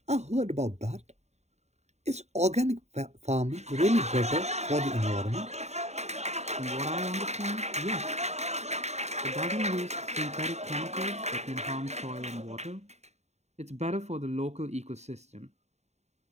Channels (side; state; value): left; late; 0.32 ms